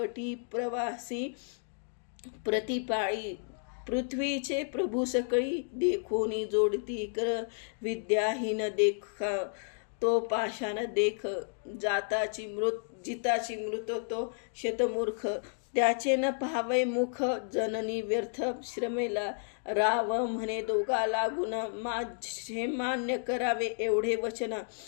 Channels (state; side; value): silent; right; digital silence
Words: प्रवासी प्रतिपाळी पृथ्वीचे प्रभू सकळी देखोनी जोडती कर विद्याहीन देख तो पाषाण देख जिताची मृत तो शतमूर्ख त्याचे न पाहावे मुख जननी व्यर्थ श्रमेला राव म्हणे दोघा लागून माझे मान्य करावे एवढे वचन